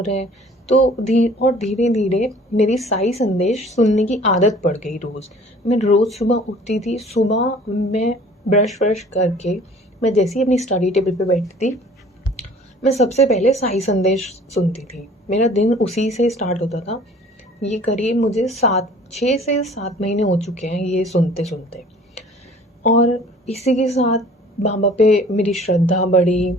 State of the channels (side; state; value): both; normal; correlation 0.50